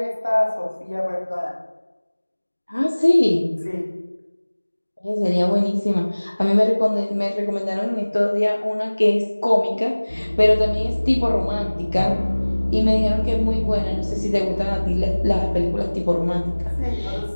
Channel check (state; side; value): inverted; both; correlation -1.00